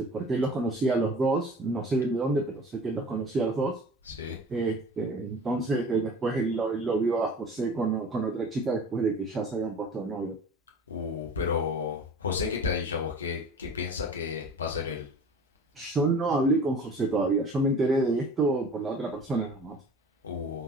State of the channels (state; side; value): normal; both; correlation 0.42